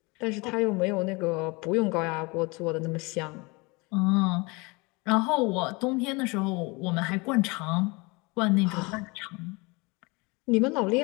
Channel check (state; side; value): quieter; right; 26.8 dB